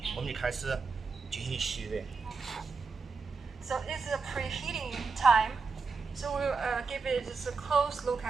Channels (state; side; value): quieter; left; 4.8 dB